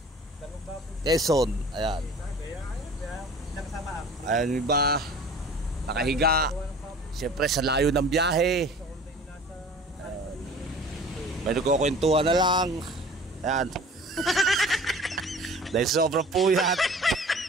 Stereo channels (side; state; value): both; normal; correlation 0.45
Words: Quezon. Ayan. Ayan yung iba nakahiga. Siyempre sa layo ng biyahe. Ayan. May nagkukwentuhan na lang. Ayan. Dahil sobrang puyat.